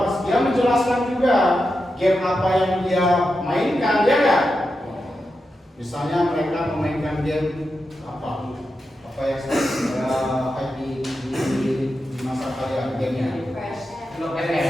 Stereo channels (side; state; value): both; normal; correlation 0.89